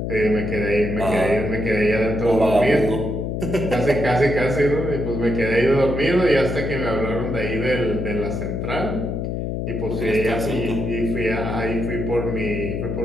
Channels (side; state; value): left; noise; hum, 2 dB below the sound